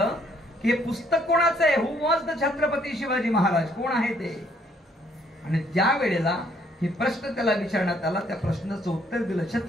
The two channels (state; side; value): normal; both; correlation 0.66